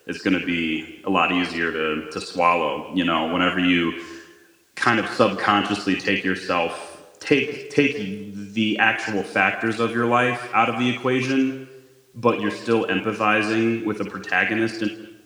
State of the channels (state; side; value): identical; both; correlation 1.00